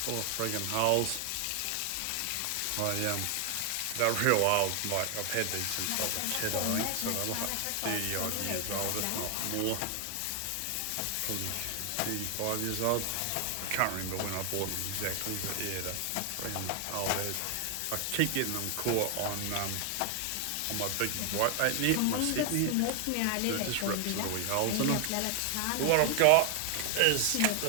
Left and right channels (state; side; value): different; both; correlation 0.00